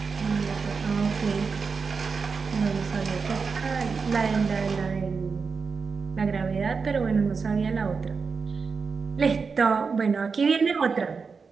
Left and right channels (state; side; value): quieter; left; 5.1 dB